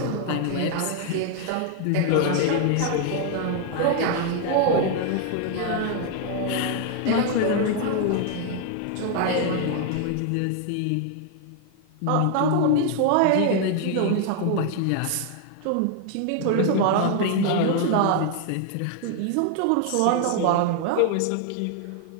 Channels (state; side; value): different; both; correlation 0.00